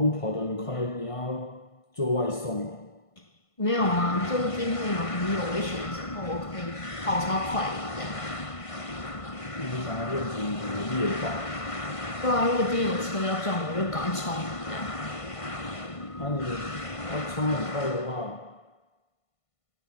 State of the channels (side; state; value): right; late; 1.5 ms